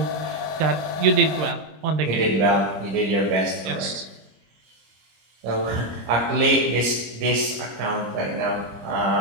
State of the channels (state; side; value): late; left; 25 ms